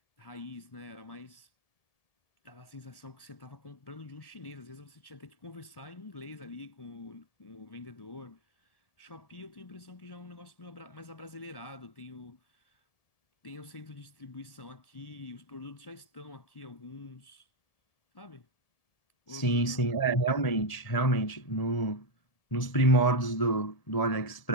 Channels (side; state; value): right; late; 1.7 ms